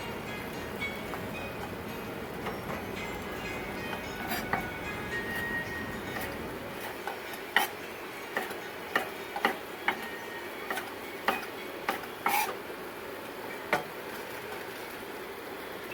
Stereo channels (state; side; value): identical; both; correlation 1.00